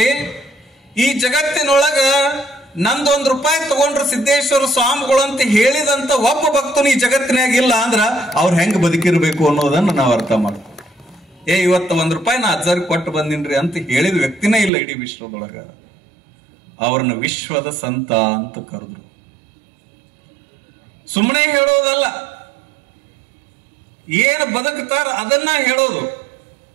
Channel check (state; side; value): drops out; left; at 14.7 s